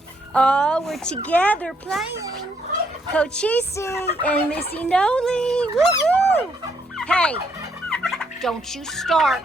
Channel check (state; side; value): normal; both; correlation 0.72